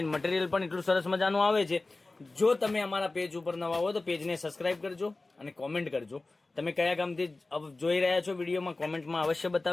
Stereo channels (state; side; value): quieter; right; 3.2 dB